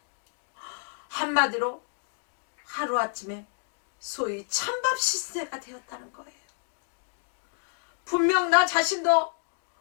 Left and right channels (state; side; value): silent; right; 58 dB below the other